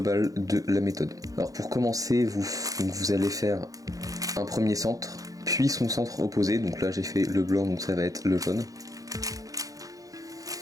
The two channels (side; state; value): left; late; 0.17 ms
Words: de la méthode. Alors pour commencer, vous allez faire un premier centre, puis son centre opposé, donc là j'ai fait le blanc, donc ça va être le jaune,